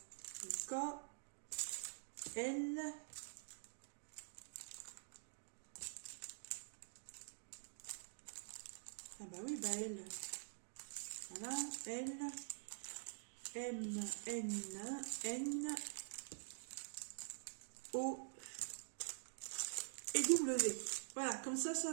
Le K. L. Ah bah oui, bah L. Voilà. L. M. N. N. O. Et W. Voilà, comme ça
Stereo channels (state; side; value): silent; left; digital silence